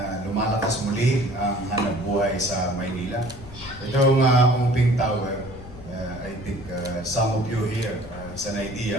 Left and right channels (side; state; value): left; noise; rumble, 16 dB below the sound